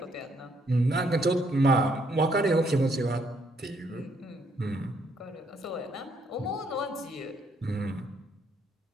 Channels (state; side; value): normal; both; correlation 0.71